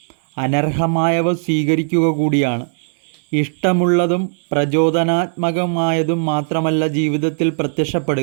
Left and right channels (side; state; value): left; silent; 67 dB below the other